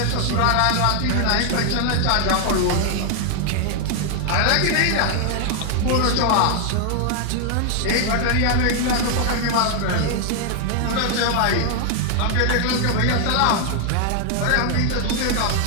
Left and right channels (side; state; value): both; different; correlation 0.00